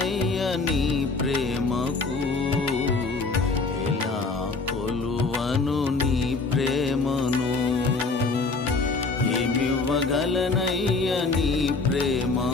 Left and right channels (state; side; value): quieter; right; 3.9 dB